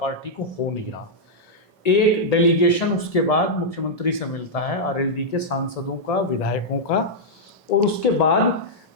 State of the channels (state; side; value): normal; both; correlation -0.07